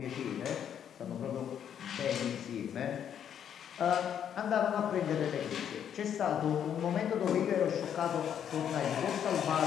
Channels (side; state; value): right; quieter; 9.0 dB